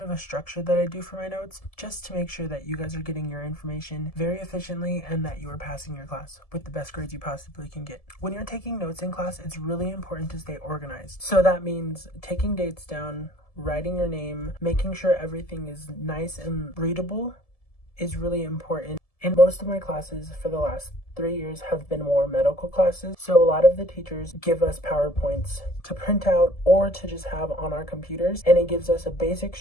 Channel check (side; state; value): right; late; 1.7 ms